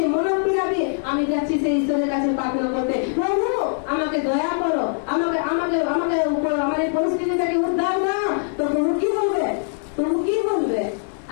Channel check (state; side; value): silent; right; digital silence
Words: মনোপীড়া দিয়ে আমি যাচ্ছি সেই ঈশ্বরের কাছে প্রার্থনা করতে, প্রভু আমাকে দয়া করো, আমাকে আমাকে আমাকে আমার এই পরিস্থিতিটাকে উদ্ধার দাও। তো প্রভু কি বলবে? প্রভু কি বলবে?